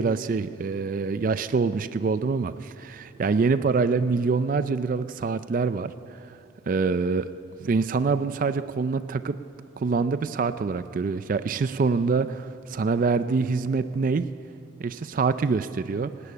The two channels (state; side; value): quieter; left; 4.2 dB